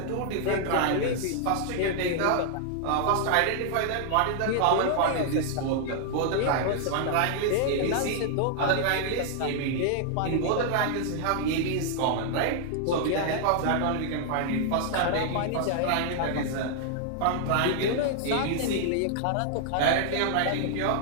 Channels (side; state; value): both; different; correlation -0.01